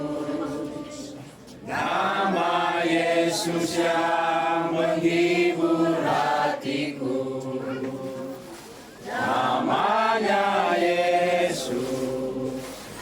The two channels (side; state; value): both; identical; correlation 1.00